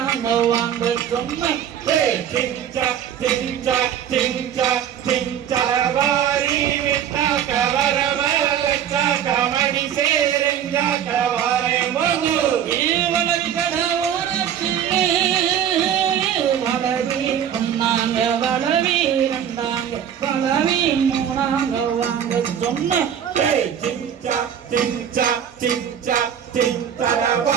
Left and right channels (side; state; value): left; quieter; 9.3 dB